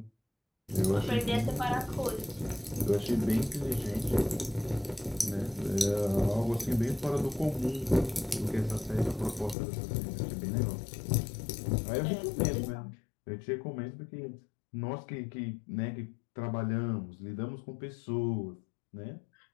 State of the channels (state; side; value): drops out; right; at 9.6 s